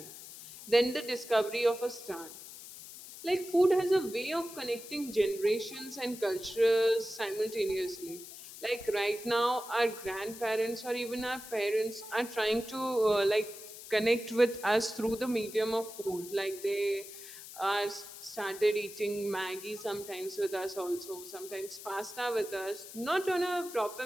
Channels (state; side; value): noise; left; hiss, 14 dB below the sound